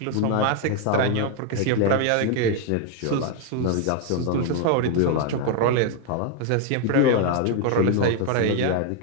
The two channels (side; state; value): both; different; correlation 0.00